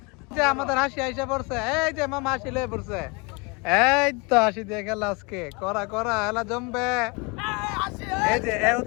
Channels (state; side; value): quieter; right; 29.6 dB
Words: যে আমাদের হাসি আইসা পড়ছে, এই যে মামা হাসি লয়ে পড়ছে, এই তো হাসি দিয়ে খেলা আজকে করা করা খেলা জমবে। এই যে এ